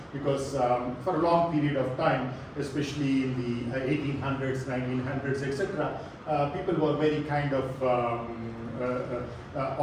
because for a long period of time, especially in the 1800s, 1900s, etc., people were very kind of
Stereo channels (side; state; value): both; identical; correlation 1.00